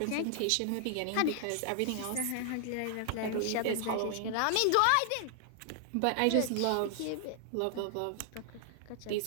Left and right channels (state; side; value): different; both; correlation 0.00